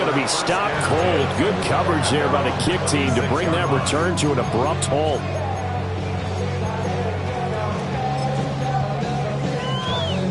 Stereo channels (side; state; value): both; identical; correlation 1.00